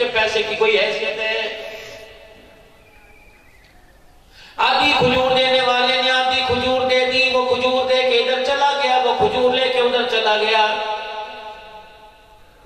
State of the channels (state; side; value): identical; both; correlation 1.00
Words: پیسے کی کوئی حیثیت ہے۔ آدھی کھجور دینے والے نے آدھی کھجور دے دی، وہ کھجور دے کے ادھر چلا گیا، وہ کھجور لے کے ادھر چلا گیا۔